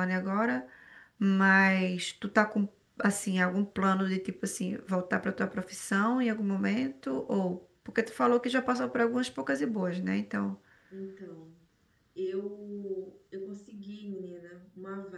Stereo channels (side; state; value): both; identical; correlation 1.00